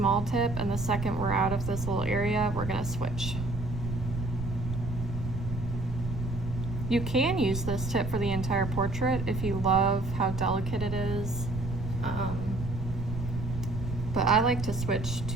tip, and the second we're out of this little area, we're gonna switch. You can use this tip for the entire portrait if you love how delicate it is. But I like to switch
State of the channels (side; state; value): right; noise; rumble, 6 dB below the sound